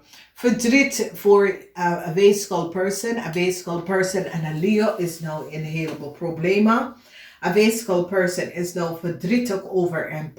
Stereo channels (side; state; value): both; identical; correlation 1.00